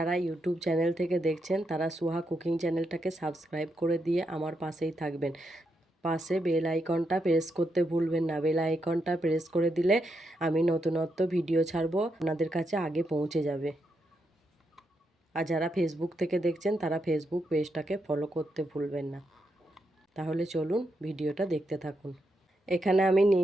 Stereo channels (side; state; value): both; normal; correlation 0.82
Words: ইউটিউব চ্যানেল থেকে দেখছেন তারা সুহা কুকিং চ্যানেলটাকে সাবস্ক্রাইব করে দিয়ে আমার পাশেই থাকবেন। পাশে বেল আইকনটা প্রেস করতে ভুলবেন না। বেল আইকনটা প্রেস করে দিলে আমি নতুনত্ব ভিডিও ছাড়বো, আপনাদের কাছে আগে পৌঁছে যাবে। আর যারা ফেসবুক থেকে দেখছেন তারা ফেসবুক পেজটাকে ফলো করতে ভুলবেন না। তাহলে চলুন ভিডিওটা দেখতে থাকুন। এখানে আমি